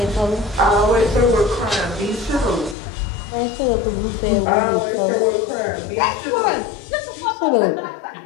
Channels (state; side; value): drops out; right; at 2.8 s